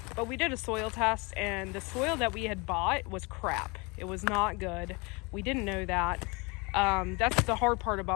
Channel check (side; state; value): right; quieter; 28.2 dB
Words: but we did a soil test, and the soil that we had bought was crap. It was not good. We didn't know that. That's the hard part